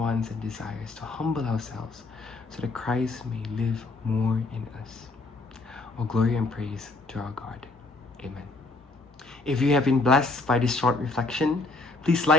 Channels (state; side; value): quieter; right; 3.4 dB